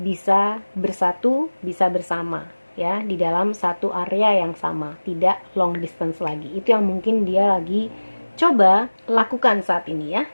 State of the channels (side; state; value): both; inverted; correlation -1.00